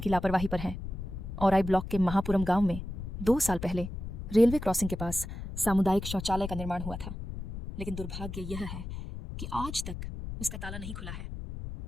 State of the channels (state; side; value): noise; left; rumble, 8 dB below the sound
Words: लापरवाही पर हैं। औराई ब्लॉक के महापुरम गांव में 2 साल पहले रेलवे क्रॉसिंग के पास सामुदायिक शौचालय का निर्माण हुआ था, लेकिन दुर्भाग्य यह है कि आज तक उसका ताला नहीं खुला है।